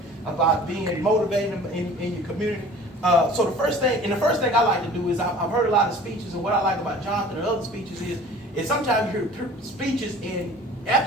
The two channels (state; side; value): normal; both; correlation 0.45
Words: about being motivated in your community. So the first thing I like to do is I've heard a lot of speeches, and what I like about Jonathan and other speeches is sometimes you hear speeches, and